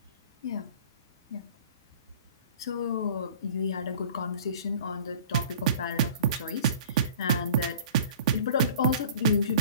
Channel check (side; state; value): both; inverted; correlation -0.46